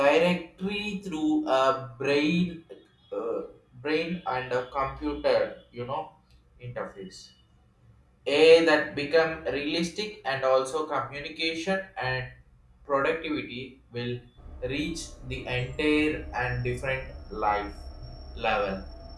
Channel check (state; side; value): identical; both; correlation 1.00